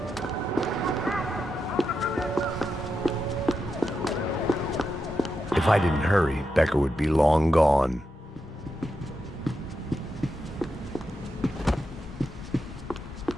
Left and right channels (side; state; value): both; normal; correlation 0.86